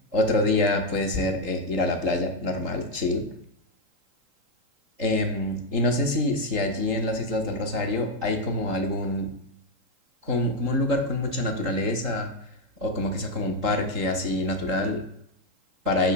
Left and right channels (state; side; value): late; left; 3.8 ms